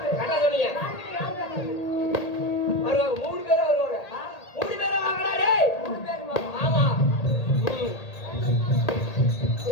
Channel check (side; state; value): right; late; 1.8 ms